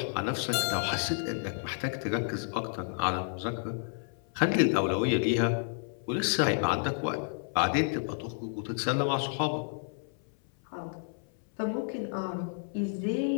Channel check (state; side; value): silent; right; 57 dB below the other